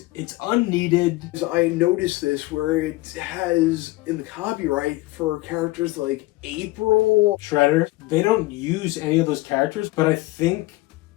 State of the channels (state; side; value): quieter; right; 19.9 dB